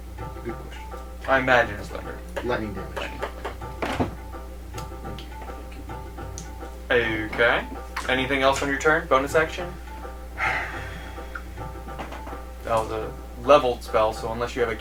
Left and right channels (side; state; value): both; identical; correlation 1.00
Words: good question. I imagine it's thunder. Lightning damage. Lightning. Okay. Anything else on your turn? Bonus action? That was a leveled spell, so unless you have a